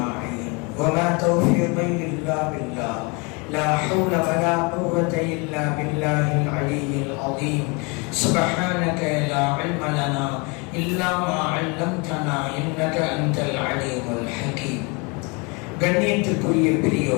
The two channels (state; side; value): quieter; right; 30.2 dB